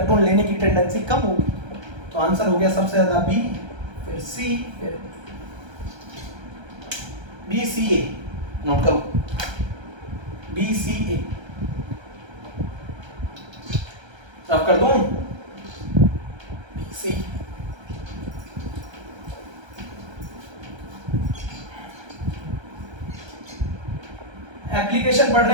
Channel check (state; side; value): late; left; 1.3 ms